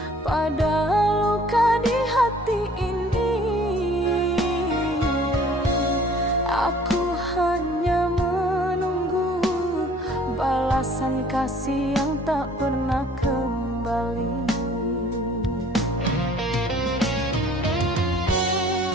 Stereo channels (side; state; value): both; normal; correlation 0.54